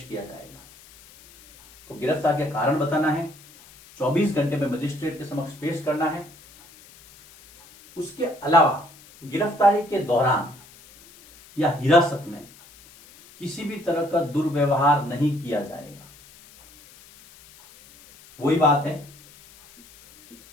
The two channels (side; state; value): left; noise; hiss, 24 dB below the sound